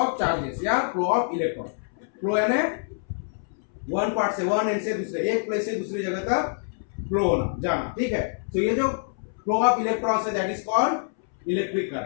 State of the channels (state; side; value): silent; right; 61 dB below the other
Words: charges या फ्लो ऑफ इलेक्ट्रॉन। फ्लो यानी वन पार्ट से, वन एंड से दूसरे, एक प्लेस से दूसरी जगह तक फ्लो होना, जाना। ठीक है, तो ये जो फ्लो ऑफ इलेक्ट्रॉन्स है that is called electric